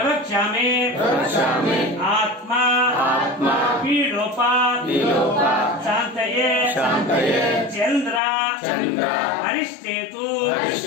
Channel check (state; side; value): drops out; right; at 8.2 s